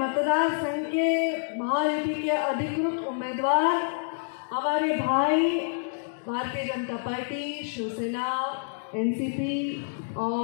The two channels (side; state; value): right; silent; digital silence